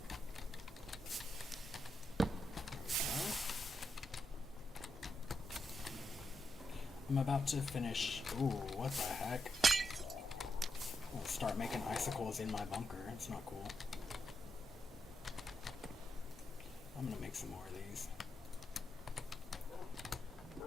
I'm about to finish. Ooh, what the heck? I'll start making icicles in my bunker. It's not cool. I'm gonna make some more of these.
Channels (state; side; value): normal; both; correlation 0.84